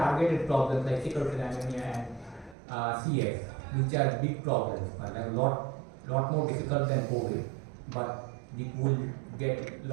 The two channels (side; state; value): left; drops out; at 2.6 s